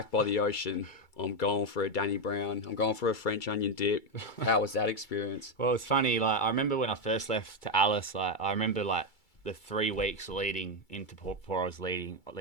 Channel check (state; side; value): late; right; 2.3 ms